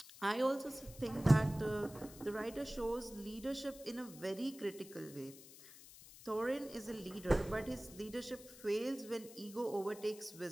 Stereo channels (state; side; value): noise; left; hiss, 18 dB below the sound